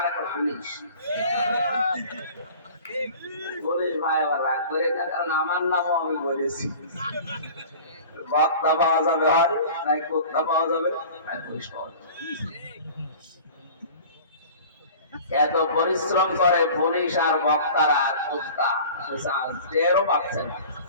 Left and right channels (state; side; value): inverted; both; correlation -0.42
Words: একটা পুলিশ। পুলিশ ভাই আবার রাগ করে না, কারণ আমার নামও আমি বলেছি। বক্তা পাওয়া যাবে হয়, নাই কোস্তা পাওয়া যাবে, আর পুলিশ পাওয়া যাবে। এত পরিশ্রম করে পুলিশ আর বক্তারা, কোস্তা টেরও পাচ্ছে না।